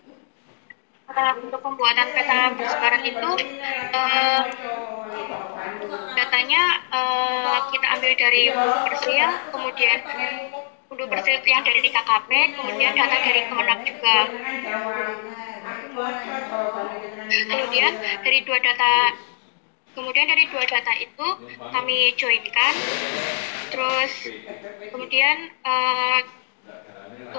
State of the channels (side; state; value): right; silent; 64 dB below the other